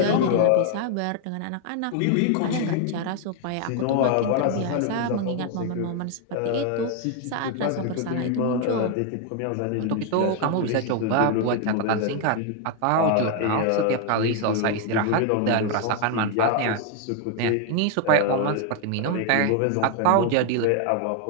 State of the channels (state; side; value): different; both; correlation 0.00